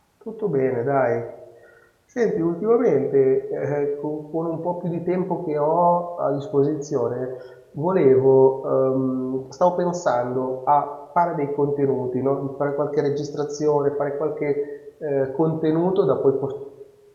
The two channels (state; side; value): identical; both; correlation 1.00